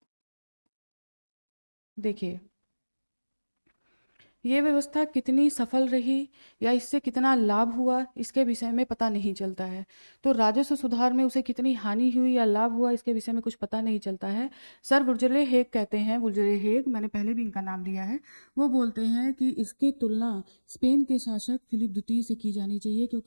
देखिए ये व्यवस्था कितनी सफल रही या इससे कितना लाभ हुआ, इसके विषय में पता नहीं चलता है। तो राजस्व सुधार में उसे कितनी हानि हुई या लाभ हुआ, इसके विषय में कुछ पता नहीं चलता है। सर वुल्जले हेग कहते हैं, वुल्जले हेग, मैंने पहले भी इनका नाम लिया है, वो बोलते हैं कि इसकी तुलना स्पेन के शासक फिलिप द्वितीय से की जानी चाहिए,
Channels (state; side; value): inverted; both; correlation -1.00